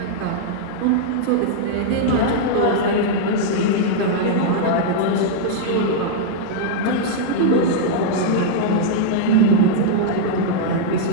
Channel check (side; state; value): both; different; correlation -0.02